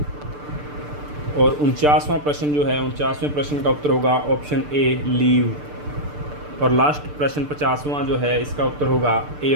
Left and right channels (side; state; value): left; late; 6.8 ms